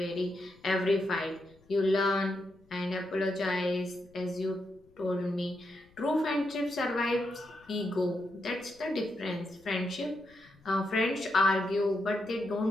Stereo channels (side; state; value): left; noise; rumble, 30 dB below the sound